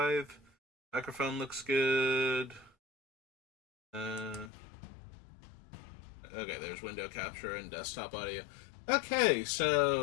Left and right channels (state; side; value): drops out; right; at 4.5 s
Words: Microphone looks good. Uh, okay, there's window capture and desktop audio. Okay,